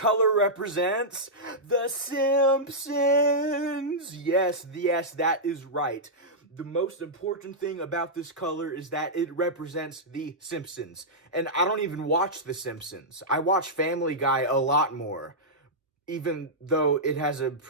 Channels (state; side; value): normal; both; correlation -0.10